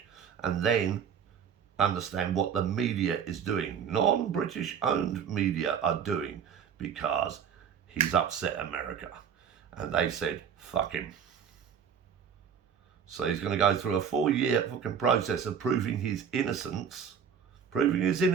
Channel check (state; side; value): quieter; left; 7.5 dB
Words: and then understand what the media is doing. Non-British owned media are doing, because he's upset America. And they said, fuck him. So he's going to go through a 4-year fucking process of proving his innocence,